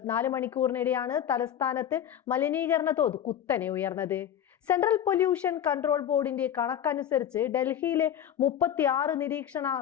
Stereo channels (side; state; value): right; quieter; 9.9 dB